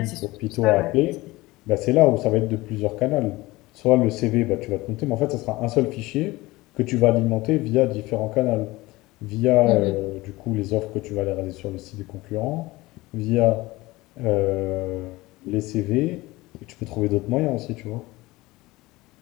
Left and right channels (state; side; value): quieter; right; 20.2 dB